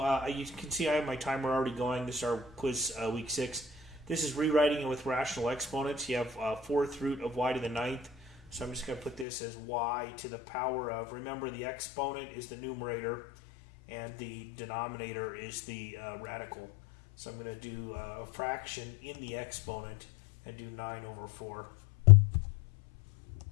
you can see I have my timer already going. This is our quiz week 6. This is rewriting it with rational exponents. You have 4th root of y to the 9th. So I'm just going to put this as y to the power of, remember the exponent is the numerator and the denominator is the radical. So I'm going to do a fraction in the exponent and do 9 over 4.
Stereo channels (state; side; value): drops out; right; at 9.2 s